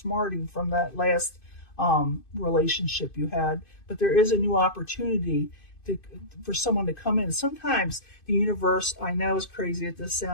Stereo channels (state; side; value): late; right; 2.5 ms